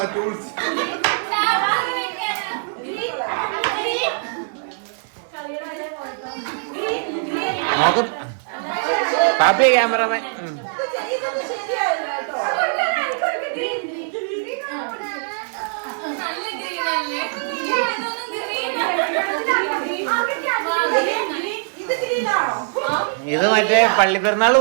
ടൂൾസ് നോക്കും. പാപ്പി ക്യാമറമാൻ. ഇത് മറ്റേ പള്ളിപ്പെരുന്നാള്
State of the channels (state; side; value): silent; left; 64 dB below the other